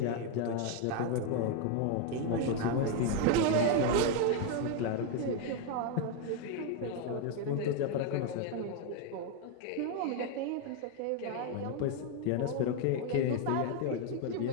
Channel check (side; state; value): both; different; correlation 0.01